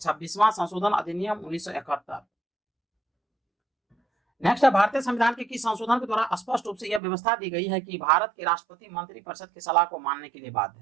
संशोधन अधिनियम 1971। नेक्स्ट है भारतीय संविधान के किस संशोधन के द्वारा स्पष्ट रूप से यह व्यवस्था दी गई है कि भारत के राष्ट्रपति मंत्रिपरिषद की सलाह को मानने के लिए बाध्य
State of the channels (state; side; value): drops out; left; at 7.0 s